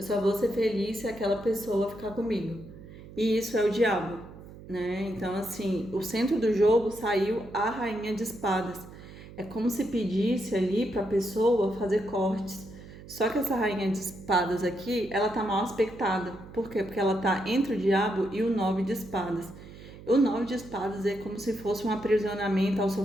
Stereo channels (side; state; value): right; noise; hum, 17 dB below the sound